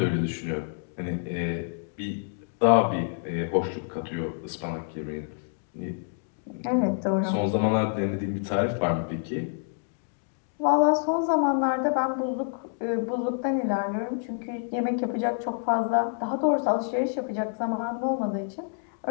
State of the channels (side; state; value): right; silent; 60 dB below the other